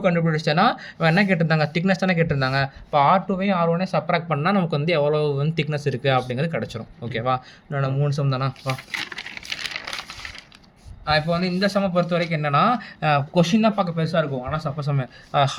கண்டுபிடிச்சேன்னா என்ன கேட்டிருந்தாங்க, திக்னஸ் தானே கேட்டிருந்தாங்க. இப்போ R2வையும் R1ஐயும் சப்ராக்ட் பண்ணால் நமக்கு வந்து எவ்வளோ வந்து திக்னஸ் இருக்குது அப்படிங்கிறது கிடச்சிரும். ஓகேவா, என்னோட 3 சம் தானா. வா இப்போ வந்து இந்த சம பொறுத்த வரைக்கும் என்னன்னா கொஸ்டின் தான் பார்க்க பெருசாக இருக்கும். ஆனால் சப்போஸ்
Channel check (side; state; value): both; identical; correlation 1.00